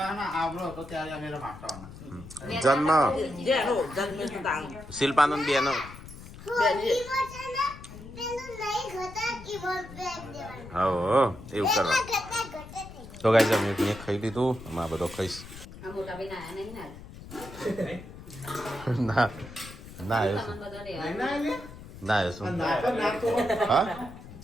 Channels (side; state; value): left; noise; rumble, 15 dB below the sound